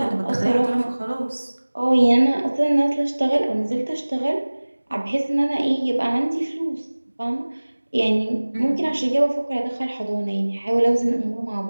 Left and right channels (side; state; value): both; inverted; correlation -1.00